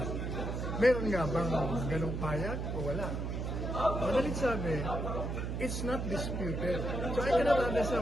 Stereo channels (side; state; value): right; noise; hum, 3 dB below the sound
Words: meron nga bang ganong pahayag o wala? Madalit sabi, it's not disputed. So I cannot